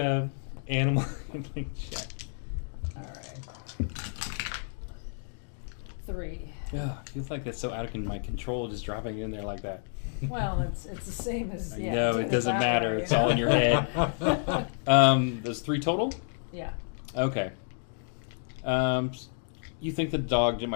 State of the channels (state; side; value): silent; right; digital silence